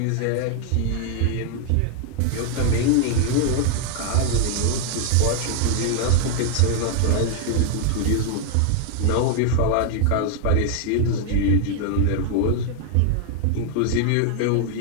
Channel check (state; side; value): different; both; correlation 0.00